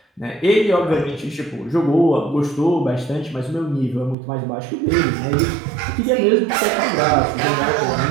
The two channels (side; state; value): left; drops out; at 4.2 s